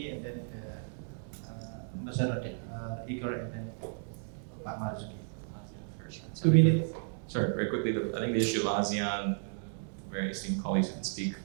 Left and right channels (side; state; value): left; silent; digital silence